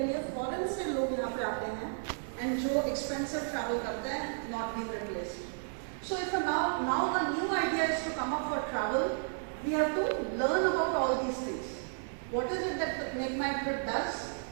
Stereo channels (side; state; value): left; silent; digital silence